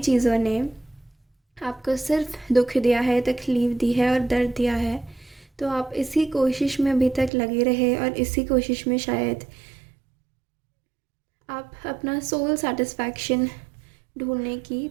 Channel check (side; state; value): left; drops out; at 7.3 s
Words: ने आपको सिर्फ दुख दिया है, तकलीफ़ दी है और दर्द दिया है. तो आप इसी कोशिश में अभी तक लगे रहे, और इसी कोशिश में शायद आप अपना सोल सेटिस्फैक्शन ढूंढने की